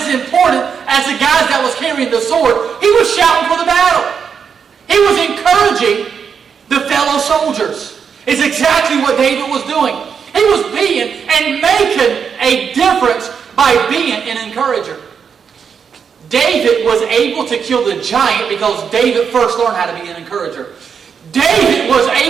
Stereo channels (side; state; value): left; quieter; 6.7 dB